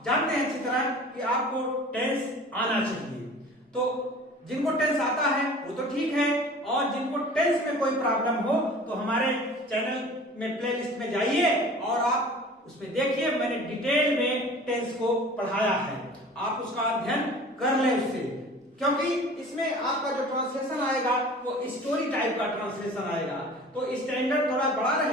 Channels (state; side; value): normal; both; correlation 0.43